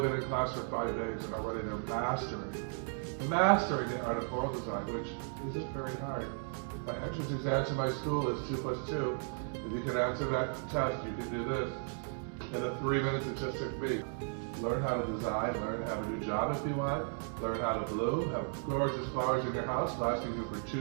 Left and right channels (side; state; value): left; silent; 54 dB below the other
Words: been in class for 5 days and already they're mastering the art of floral design, which isn't very hard. My entrance exam to my school is 2 + 2. If you can answer that test, you can do this in the 3 minutes it just took me. Learn how to design, learn to have a new job if you want, learn how to bloom, have gorgeous flowers in your house lasting you for